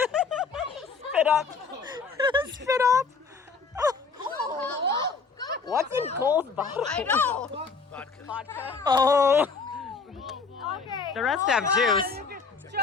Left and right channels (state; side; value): quieter; right; 4.8 dB